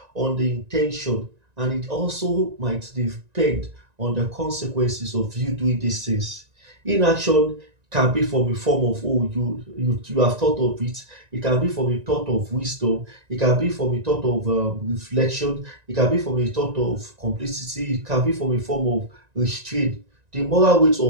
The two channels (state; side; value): late; left; 1.9 ms